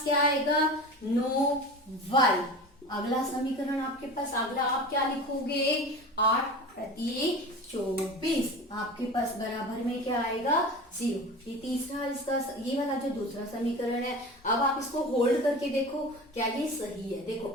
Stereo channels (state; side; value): normal; both; correlation 0.34